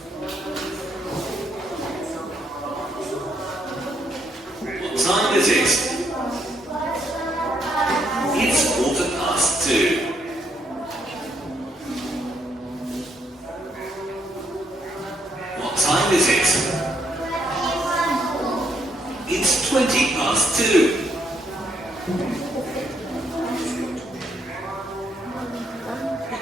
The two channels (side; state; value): both; normal; correlation 0.73